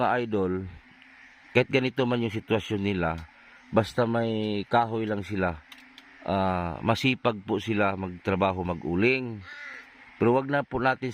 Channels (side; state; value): both; identical; correlation 1.00